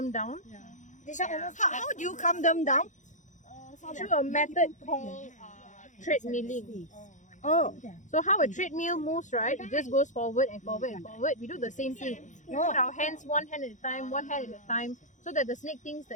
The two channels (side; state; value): right; late; 0.36 ms